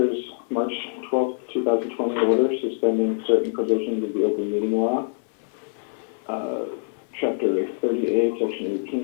March 12th, 2020 order suspending certain provisions of the open meeting law, Chapter 30A, Section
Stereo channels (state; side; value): silent; right; digital silence